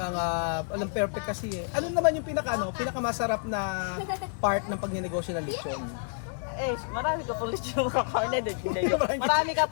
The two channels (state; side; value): silent; right; digital silence